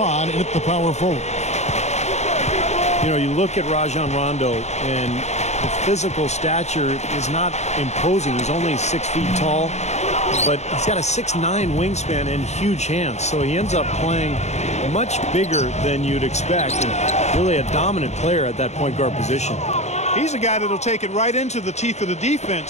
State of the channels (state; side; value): late; right; 0.32 ms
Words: in at the power forward. You know, you look at Rajon Rondo, and the physical stature is not imposing. He's only 6 feet tall, but he's got a 6'9" wingspan and huge hands. So he ends up playing much bigger than you'd expect, and really a dominant player at that point guard position. He's a guy that'll take it right into the teeth of the